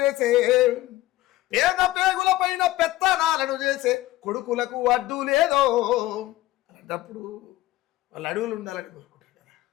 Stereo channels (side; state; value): right; quieter; 17.0 dB